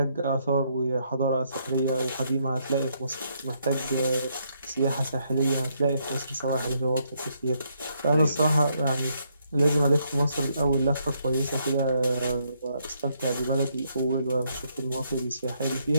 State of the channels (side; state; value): both; inverted; correlation -0.74